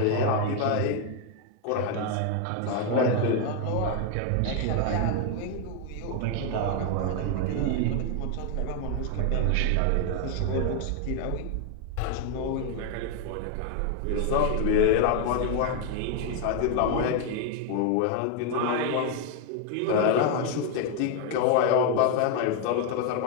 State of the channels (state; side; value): different; both; correlation 0.00